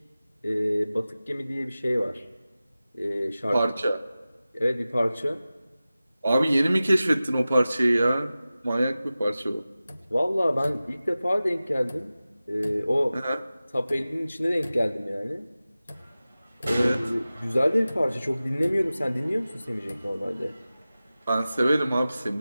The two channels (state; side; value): inverted; both; correlation -0.96